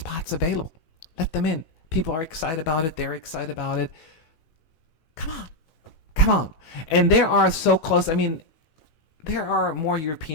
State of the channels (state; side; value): late; right; 18 ms